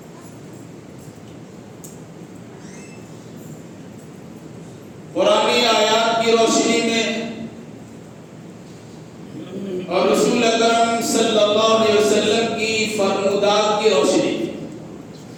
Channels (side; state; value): both; identical; correlation 1.00